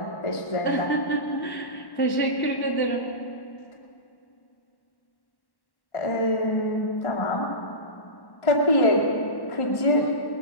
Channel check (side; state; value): right; late; 1.1 ms